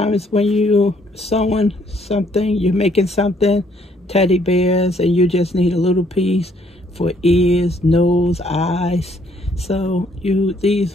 when you sewing something, you're making something, teddy bears, and you just need a little piece for ears, nose, eyes. So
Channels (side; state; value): both; normal; correlation 0.66